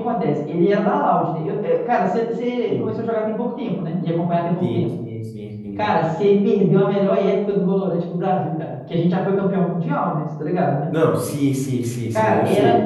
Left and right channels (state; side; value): identical; both; correlation 1.00